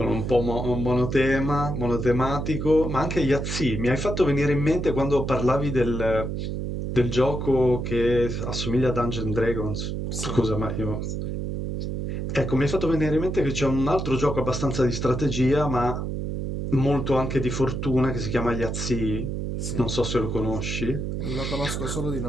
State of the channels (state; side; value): noise; right; hum, 3 dB below the sound